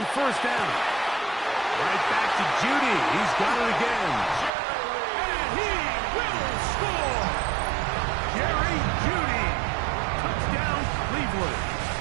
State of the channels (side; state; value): left; drops out; at 4.5 s